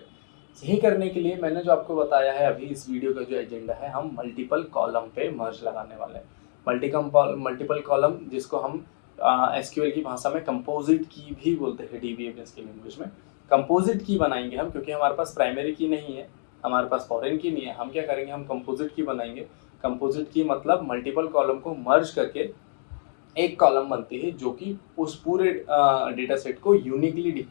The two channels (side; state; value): right; silent; digital silence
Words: सही करने के लिए मैंने जो आपको बताया है अभी, इस वीडियो का जो एजेंडा है, हम मल्टीपल कॉलम पे मर्ज लगाने वाले हैं। मल्टीपल कॉलम, जिसको हम एसक्यूएल की भाषा में कंपोजिट की भी बोलते हैं, डीबीएमएस की लैंग्वेज में कंपोजिट की बनाएंगे हम, क्योंकि हमारे पास प्राइमरी की नहीं है, हमारे पास फॉरेन की नहीं है। हम क्या करेंगे, हम कंपोजिट की बनाएंगे। कंपोजिट की मतलब मल्टीपल कॉलम को मर्ज करके एक कॉलम बनती है जो कि उस पूरे डेटा सेट को यूनिकली